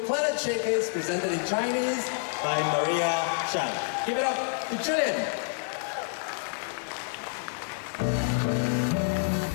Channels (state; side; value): silent; right; digital silence